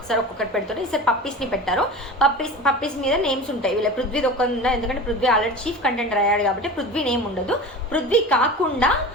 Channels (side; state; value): both; normal; correlation 0.33